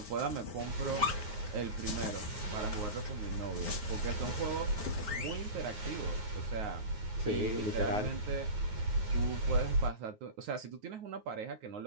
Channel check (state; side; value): late; left; 9.4 ms